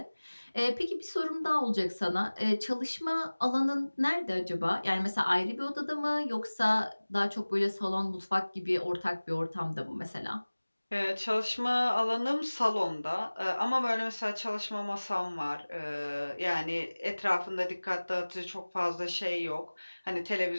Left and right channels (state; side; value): inverted; both; correlation -1.00